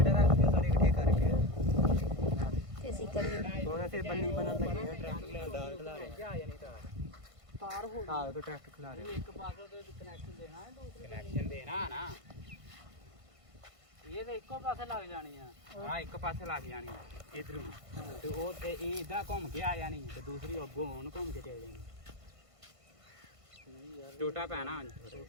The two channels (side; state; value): left; late; 1.5 ms